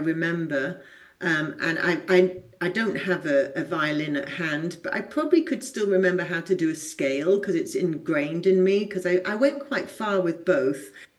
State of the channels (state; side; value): identical; both; correlation 1.00